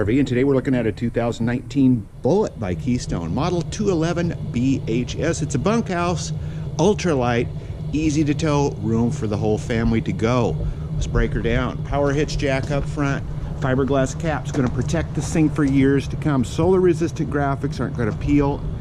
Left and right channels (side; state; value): both; identical; correlation 1.00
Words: and today we're looking at a 2019 Bullet by Keystone, model 211 BHS. It's a bunkhouse, ultralight, easy to tow, room for the whole family to go. Let's break her down. Power hitch jack up front, fiberglass cap's going to protect this thing for years to come. Solar resistant graphics aren't going to peel